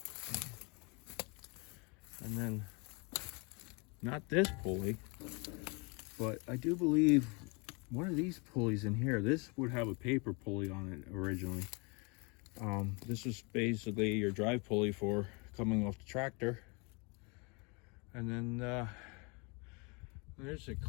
And then, not this pulley, but I do believe one of these pulleys in here, this would have a paper pulley on it originally. This is basically your drive pulley for coming off the tractor. And then there's a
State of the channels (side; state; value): right; quieter; 30.9 dB